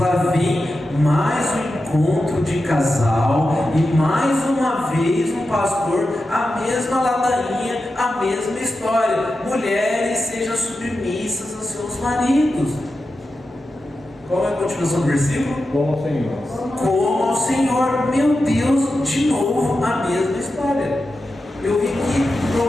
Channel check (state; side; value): normal; both; correlation 0.90